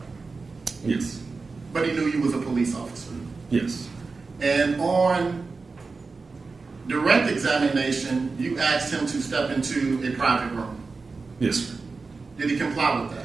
Yes. but he knew you was a police officer. Yes. And on direct examination, you asked him to step into a private room. Yes, sir. Did he comply with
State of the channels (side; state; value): left; quieter; 4.2 dB